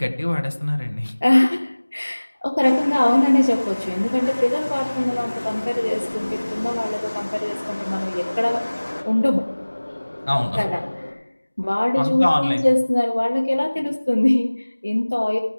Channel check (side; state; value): both; inverted; correlation -1.00